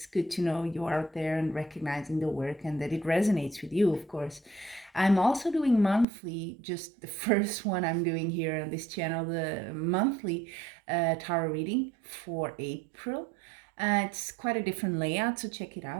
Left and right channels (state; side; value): drops out; left; at 6.1 s